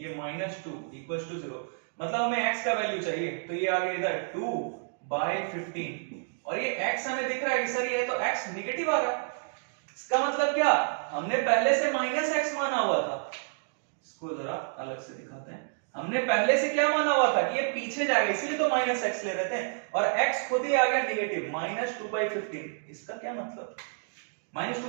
-2 इक्वल टू 0, मतलब हमें x का वैल्यू चाहिए, तो ये आ गया इधर 2/15, और ये x हमें दिख रहा है कि सर ये तो x नेगेटिव आ रहा है, इसका मतलब क्या, हमने पहले से -x माना हुआ था, इसको जरा अलग से दिखाते हैं, हमने पहले से क्या माना हुआ था कि ये पीछे जाएगा, इसलिए तो -x ले रहे थे, और x खुद ही आ गया नेगेटिव -2/15, इसका क्या मतलब,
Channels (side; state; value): left; silent; digital silence